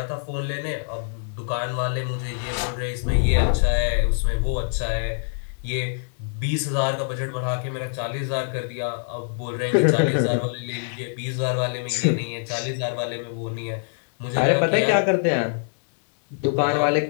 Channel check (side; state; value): right; silent; digital silence